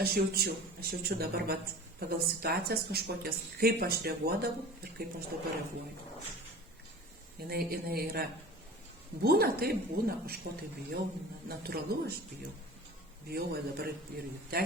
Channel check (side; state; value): both; normal; correlation 0.40